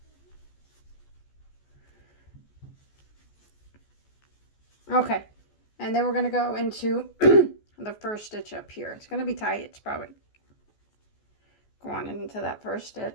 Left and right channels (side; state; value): right; late; 14 ms